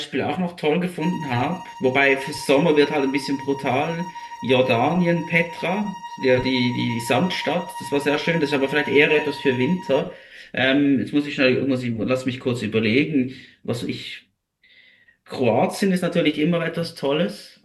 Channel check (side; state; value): both; identical; correlation 1.00